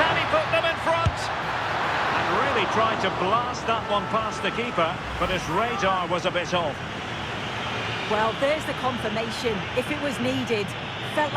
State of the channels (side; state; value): both; identical; correlation 1.00